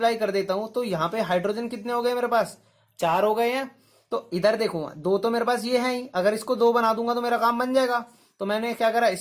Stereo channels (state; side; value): identical; both; correlation 1.00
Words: कर देता हूं तो यहाँ पे हाइड्रोजन कितने हो गए मेरे पास, 4 हो गए हैं। तो इधर देखो 2 तो मेरे पास ये है ही, अगर इसको 2 बना दूंगा तो मेरा काम बन जाएगा। तो मैंने क्या करा,